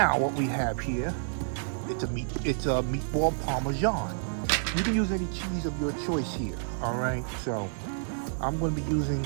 what we have here, it's a meatball Parmesan. You can use any cheese of your choice here. All right, so I'm going to be using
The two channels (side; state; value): left; silent; digital silence